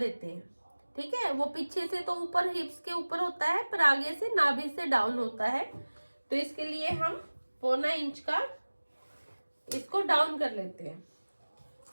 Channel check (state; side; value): inverted; both; correlation -1.00